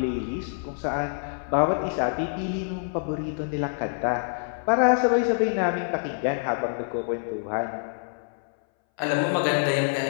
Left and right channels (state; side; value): silent; right; 60 dB below the other